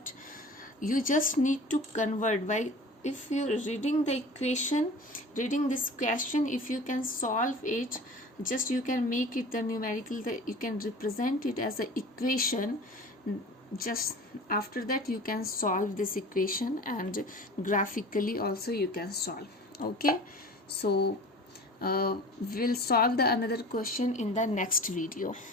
You just need to convert by, if you're reading the equation, reading this question, if you can solve it, just you can make it the numerical, that you can represent it as an equation. Just after that you can solve this equation, and graphically also you can solve. Okay, so we'll solve the another question in the next video.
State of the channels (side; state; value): both; normal; correlation 0.40